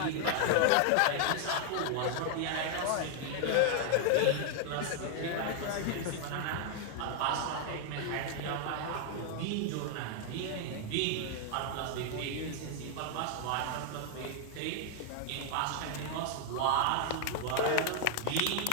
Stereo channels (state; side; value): different; both; correlation 0.00